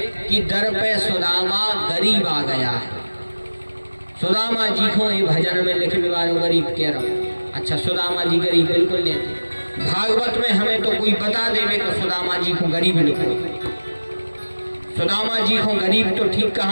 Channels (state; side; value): inverted; both; correlation -1.00